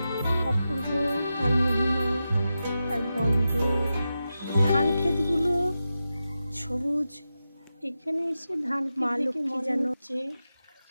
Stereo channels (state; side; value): inverted; both; correlation -0.90